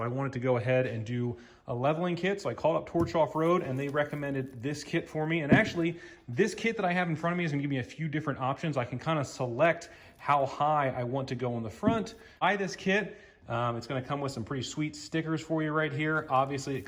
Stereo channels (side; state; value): both; identical; correlation 1.00